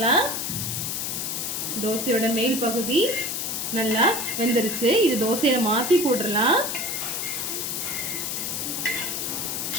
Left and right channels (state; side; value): noise; left; hiss, 2 dB below the sound